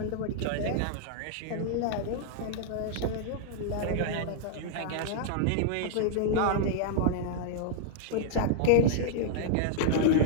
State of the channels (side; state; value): both; different; correlation -0.01